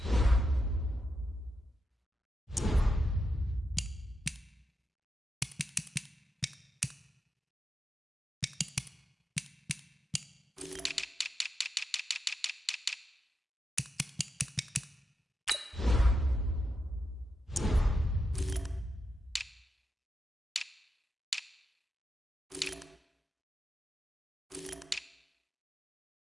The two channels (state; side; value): normal; both; correlation 0.86